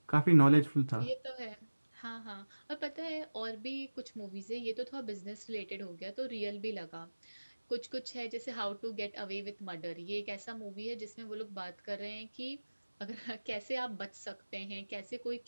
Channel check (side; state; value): both; inverted; correlation -1.00